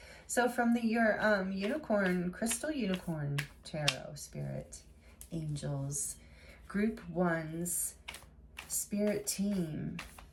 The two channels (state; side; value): identical; both; correlation 1.00